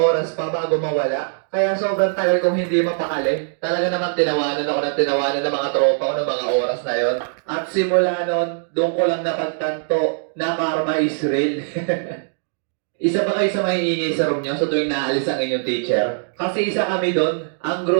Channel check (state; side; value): silent; left; digital silence